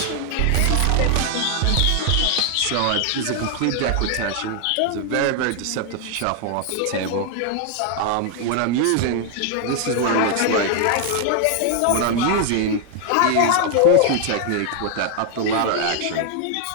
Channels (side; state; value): both; different; correlation 0.00